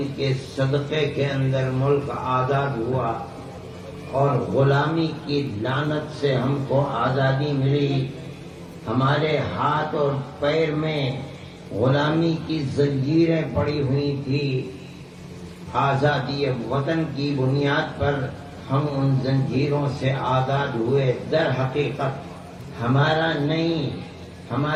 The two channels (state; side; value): identical; both; correlation 1.00